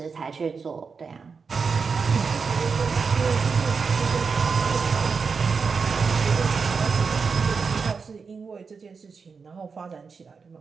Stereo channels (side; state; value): left; quieter; 5.2 dB